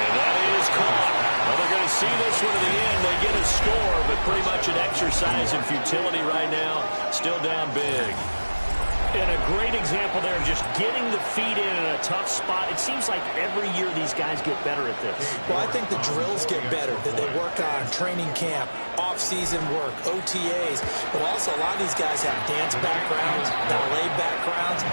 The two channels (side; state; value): both; inverted; correlation -1.00